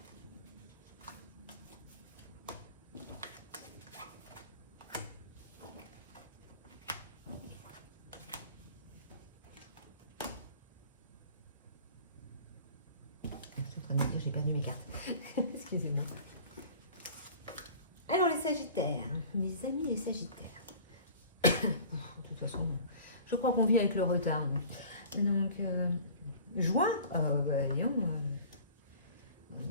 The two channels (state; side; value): inverted; both; correlation -0.44